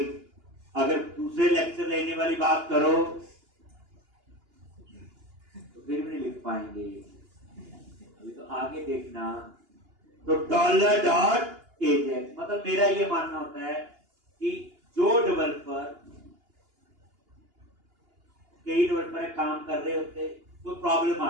अगर दूसरे लेक्चर लेने वाली बात करो तो फिर भी नहीं लिख पाएंगे, अभी तो आगे देखना। तो $.ajax मतलब मेरा ये मानना होता है कि जो डेवलपर, कई डेवलपर काम कर रहे होते, कोई प्रॉब्लम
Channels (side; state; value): left; late; 2.8 ms